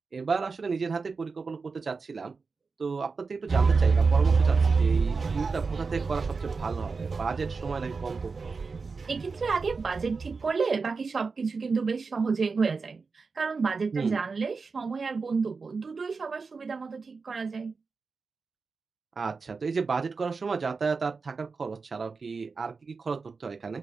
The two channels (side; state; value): left; quieter; 4.6 dB